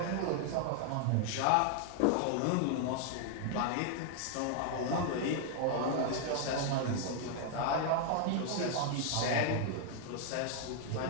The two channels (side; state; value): both; different; correlation 0.00